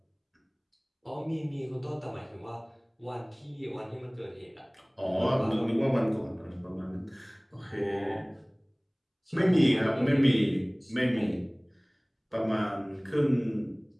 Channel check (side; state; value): both; identical; correlation 1.00